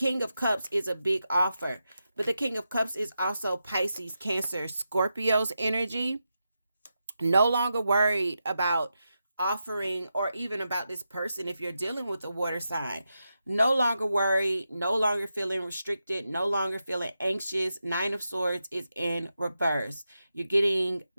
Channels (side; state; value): both; inverted; correlation -0.88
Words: of Cups is a big offer, but the King of Cups is also Pisces, Cancer, Scorpio's energy. No longer worried about offering or even about this person if you're dealing with a water sign. No longer worried, no longer feeling restricted, no longer feeling anxious. Nine of Swords is in reverse. You're getting